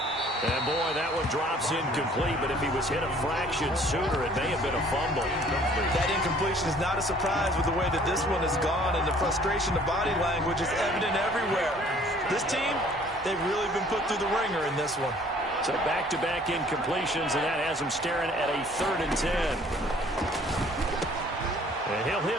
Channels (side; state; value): both; normal; correlation 0.56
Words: And boy, that one drops incomplete, but if he was hit a fraction sooner, it may have been a fumble. That incompletion is not a surprise with the way that this one has gone, and the frustration of body language is evident everywhere. This team, they've really been put through the ringer in this one. So back-to-back incompletions, and that has him staring at a 3rd and 10. And he'll